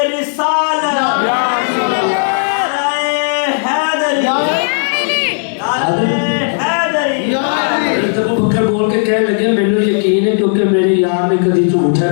बोल के कह लगे मैंने यकीन है क्योंकि मेरे यार ने कभी झूठ है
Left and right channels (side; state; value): right; silent; digital silence